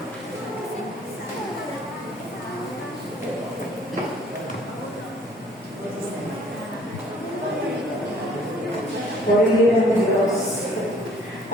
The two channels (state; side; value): normal; both; correlation 0.58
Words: Purihin ang Diyos.